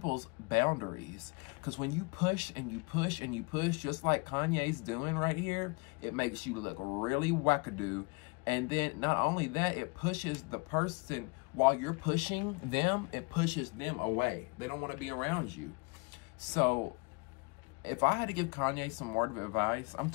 boundaries. Because when you push and you push and you push, just like Kanye's doing right here, it makes you look really wackadoo. And then not only that, it pushes the person, while you're pushing them, it pushes them away. They don't want to be around you. So if I had to give Kanye some word of advice, I'm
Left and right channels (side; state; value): right; quieter; 30.9 dB